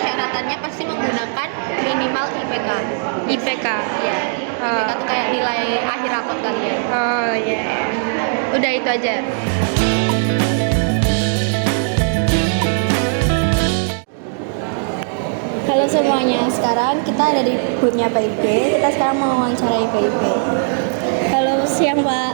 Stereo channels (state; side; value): silent; left; 67 dB below the other